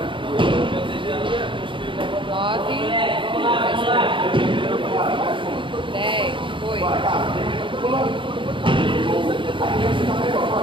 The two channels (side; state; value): left; late; 0.24 ms